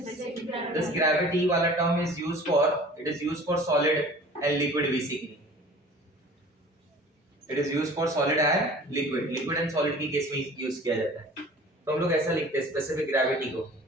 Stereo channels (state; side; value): normal; both; correlation 0.45